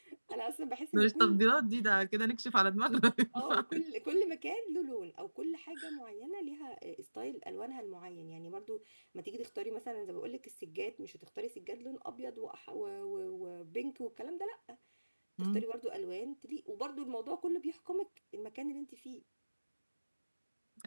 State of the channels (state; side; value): inverted; both; correlation -1.00